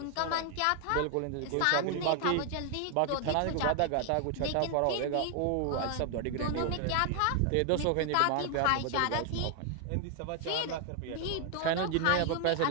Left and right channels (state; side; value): different; both; correlation 0.00